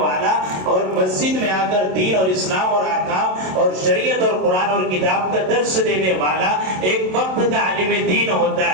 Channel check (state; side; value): late; left; 27 ms